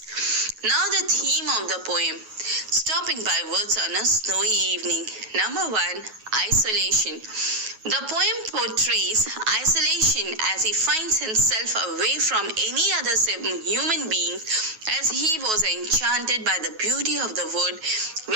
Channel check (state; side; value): late; left; 9.3 ms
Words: Now the theme of the poem, stopping by woods on a snowy evening. Number one, isolation. The poem portrays isolation as he finds himself away from any other human being as he was enchanted by the beauty of the wood,